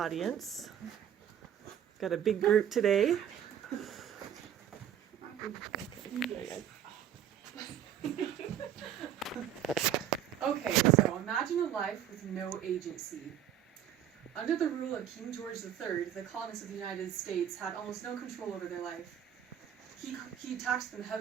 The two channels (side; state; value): left; quieter; 9.9 dB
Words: Got a big group today. Okay, so imagine a life with no agency. Under the rule of King George III, the colonists of the United States had almost no control over their life. He taxed them